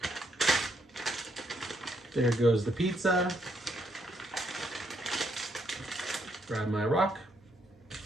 There goes the pizza. Grab my rock.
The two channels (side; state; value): both; normal; correlation 0.75